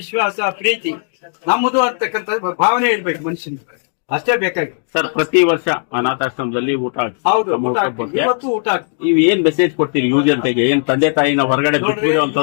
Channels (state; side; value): silent; right; digital silence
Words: ಪ್ರೀತಿ ನಮ್ಮದು ಅಂತಕ್ಕಂಥ ಭಾವನೆ ಇರ್ಬೇಕು ಮನುಷ್ಯನಿಗೆ. ಅಷ್ಟೇ ಬೇಕಾಗಿ. ಸರ್, ಪ್ರತಿ ವರ್ಷ ಅನಾಥಾಶ್ರಮದಲ್ಲಿ ಊಟ ಹೌದು, ಊಟ ಆಗ್ತದೆ. ಇವತ್ತು ಊಟ ಆಗ್ತದೆ. ನೀವು ಏನ್ ಮೆಸೇಜ್ ಕೊಡ್ತೀರಿ ಯುವ ಜನತೆಗೆ? ಏನ್ ತಂದೆ ತಾಯಿನ ಹೊರಗಡೆ